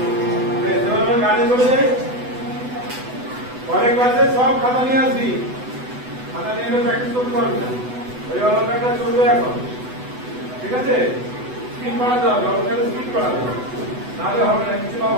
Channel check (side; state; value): left; late; 8.0 ms